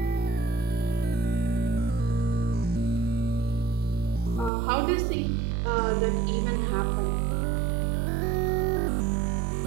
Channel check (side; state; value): left; drops out; at 4.5 s